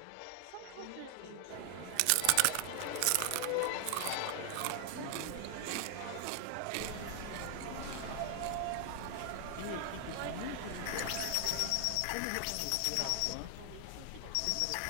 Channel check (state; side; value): different; both; correlation 0.00